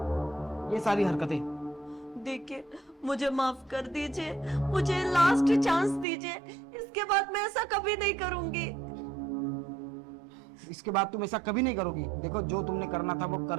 ये सारी हरकतें। देखिए, मुझे माफ कर दीजिए, मुझे लास्ट चांस दीजिए, इसके बाद मैं ऐसा कभी नहीं करूंगी। इसके बाद तुम ऐसा कभी नहीं करोगी। देखो, जो तुमने करना था वो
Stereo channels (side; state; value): left; drops out; at 6.1 s